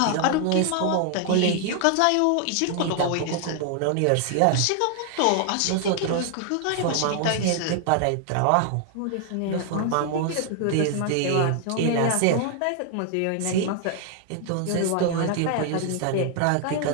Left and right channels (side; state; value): both; different; correlation 0.00